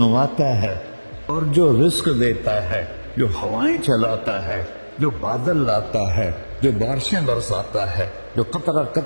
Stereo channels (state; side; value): inverted; both; correlation -1.00